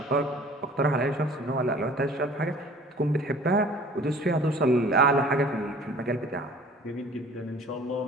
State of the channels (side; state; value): both; normal; correlation 0.48